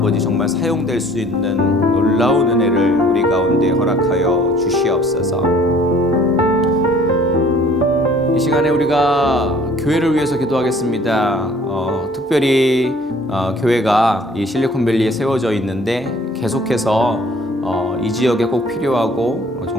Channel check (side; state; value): both; normal; correlation 0.54